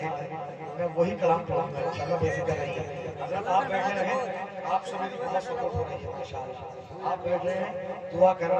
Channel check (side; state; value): both; identical; correlation 1.00